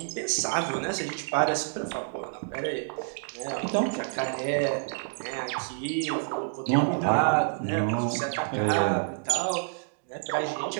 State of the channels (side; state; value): left; silent; digital silence